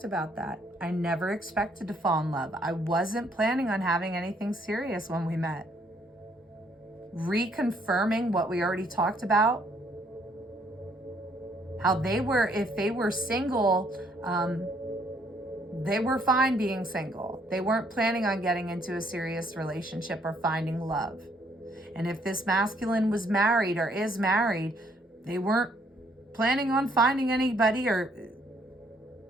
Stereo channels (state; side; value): normal; both; correlation 0.67